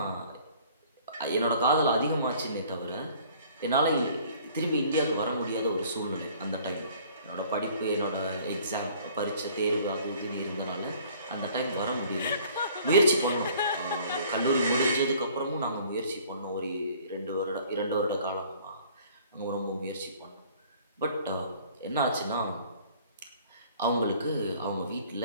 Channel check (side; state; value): both; inverted; correlation -0.54